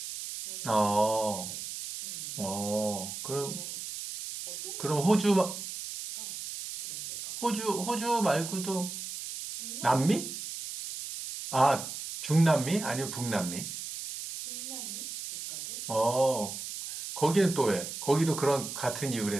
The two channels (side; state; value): right; noise; hiss, 8 dB below the sound